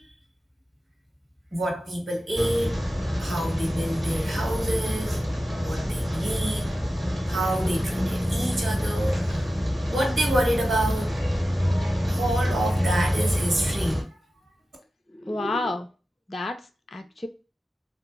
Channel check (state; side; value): normal; both; correlation 0.93